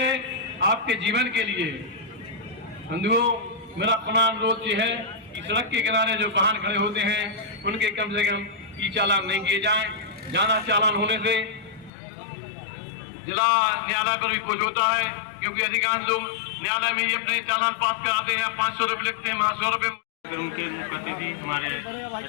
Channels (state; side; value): drops out; right; at 11.9 s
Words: आपके जीवन के लिए। बंधुओं, मेरा पुनः अनुरोध ये है कि सड़क के किनारे जो वाहन खड़े होते हैं उनके कम से कम ई चालान नहीं किए जाएं। ज्यादा चालान होने से जिला न्यायालय पर भी कुछ होता है, क्योंकि अधिकांश लोग न्यायालय में ही अपने चालान पास कराते हैं, 500 रुपये लिखते हैं, 100 रुपये। उनके मुख्य अतिथि हमारे